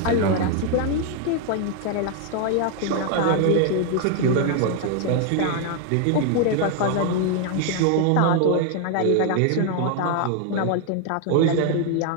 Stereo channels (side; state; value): both; different; correlation 0.00